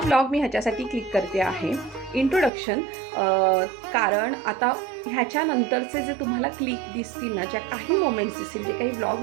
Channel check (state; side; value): drops out; left; at 2.5 s